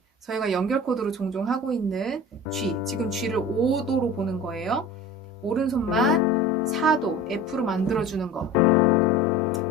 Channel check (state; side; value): normal; both; correlation 0.37